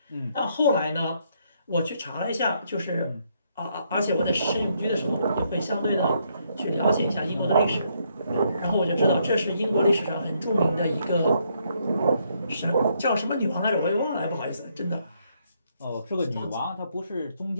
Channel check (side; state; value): both; inverted; correlation -0.73